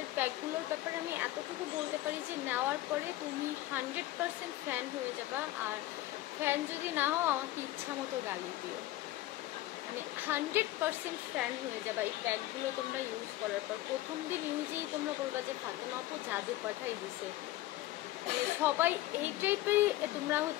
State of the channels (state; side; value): quieter; right; 16.2 dB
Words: প্যাকগুলোর ব্যাপারে আমি এতটুকু বলতে পারি যে নেওয়ার পরে তুমি 100% ফ্যান হয়ে যাবা, আর ফ্যান যদি না হও আমাকে ইচ্ছা মতো গালি দিও, মানে 100% ফ্যান হয়ে যাবা এই প্যাকগুলো তোমরা ইউজ করার পর। প্রথম দিন ইউজেই তোমরা বলবা যে ফাতেমা আপু জাদু পাঠাই দিছে, মানে সবাই এই টাইপেরই তোমরা